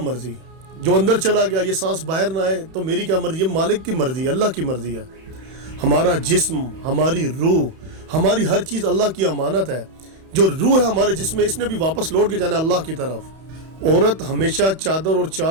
جو اندر چلا گیا یہ سانس باہر نہ آئے تو میری کیا مرضی؟ یہ مالک کی مرضی ہے، اللہ کی مرضی ہے. ہمارا جسم، ہماری روح، ہماری ہر چیز اللہ کی امانت ہے. جو روح ہے ہمارے جسم میں، اس نے بھی واپس لوٹ کے جانا ہے اللہ کی طرف. عورت ہمیشہ چادر اور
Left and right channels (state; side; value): late; left; 31 ms